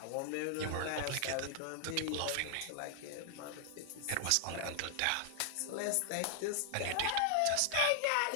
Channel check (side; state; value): both; different; correlation -0.01